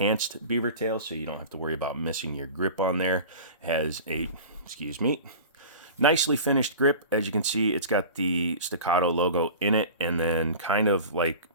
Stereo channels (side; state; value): both; inverted; correlation -0.37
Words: beaver tail, so you don't have to worry about missing your grip on there. Has a, excuse me, nicely finished grip. As you can see, it's got the Staccato logo in it, and then kind of like,